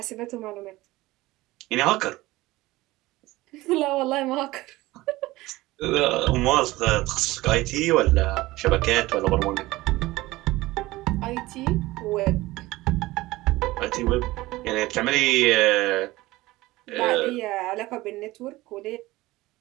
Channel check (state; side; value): quieter; left; 19.0 dB